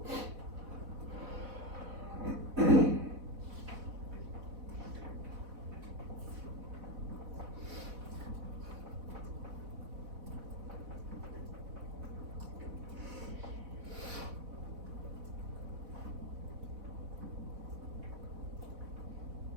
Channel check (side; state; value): left; late; 4.1 ms